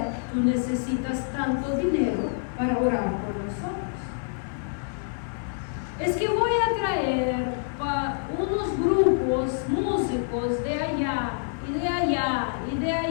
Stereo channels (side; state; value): right; silent; 56 dB below the other